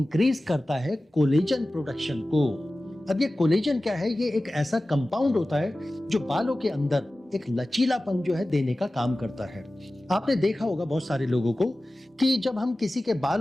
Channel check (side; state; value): both; normal; correlation 0.96